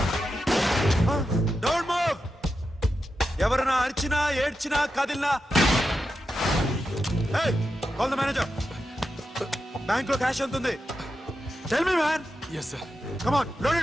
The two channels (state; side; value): normal; both; correlation 0.89